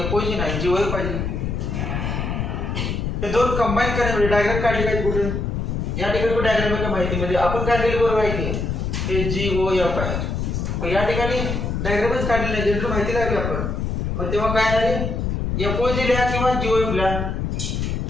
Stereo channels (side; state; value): left; noise; rumble, 2 dB below the sound